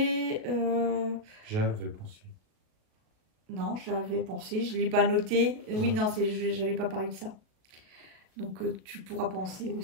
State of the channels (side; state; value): left; late; 38 ms